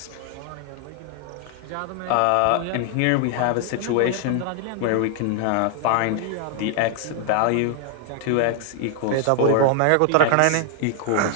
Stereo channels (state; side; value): different; both; correlation 0.00